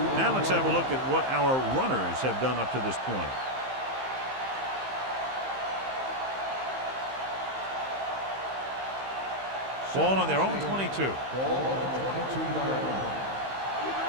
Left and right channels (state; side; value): late; left; 15 ms